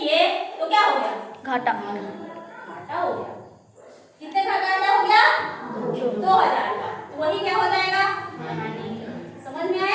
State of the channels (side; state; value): both; identical; correlation 1.00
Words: तो क्या हो गया? घाटा। घाटा हो गया। कितने का घाटा हो गया? 2000 का। तो वही क्या हो जाएगा? समझ में